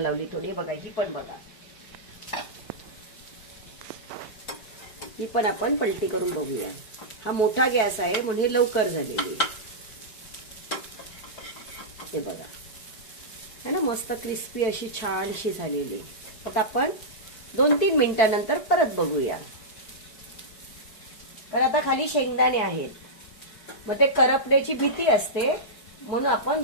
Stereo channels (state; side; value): late; right; 4.6 ms